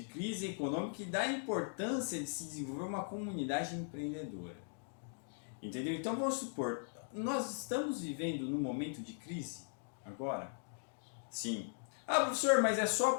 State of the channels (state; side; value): silent; right; digital silence